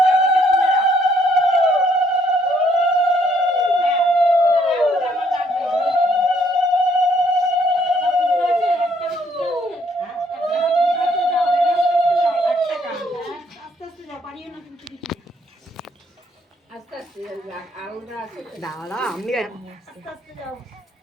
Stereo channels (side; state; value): both; normal; correlation 0.68